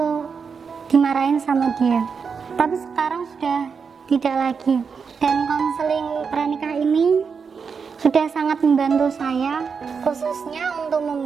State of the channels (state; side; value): quieter; left; 5.8 dB